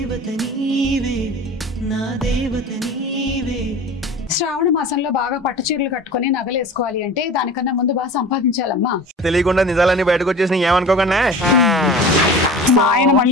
శ్రావణ మాసంలో బాగా పట్టు చీరలు కట్టుకుని నగలు వేసుకోవాలి అంటే దానికన్నా ముందు బాగా సంపాదించాలమ్మా. తెలియకుండా నిజాలన్నీ బయటకు వచ్చేసి ఏమనుకోకుండా మా ఆయన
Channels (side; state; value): both; normal; correlation 0.37